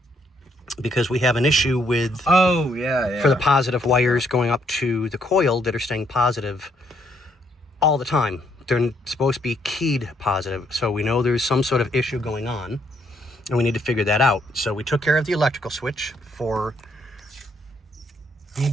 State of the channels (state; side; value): normal; both; correlation 0.71